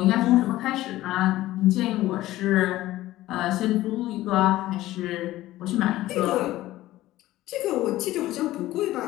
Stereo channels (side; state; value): right; quieter; 15.9 dB